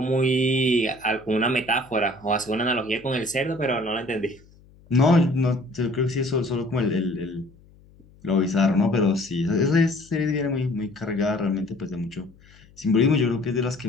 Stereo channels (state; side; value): noise; left; hum, 27 dB below the sound